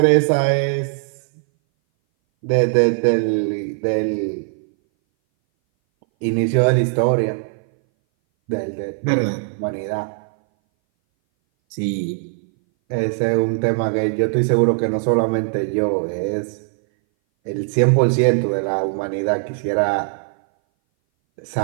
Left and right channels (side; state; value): left; silent; 60 dB below the other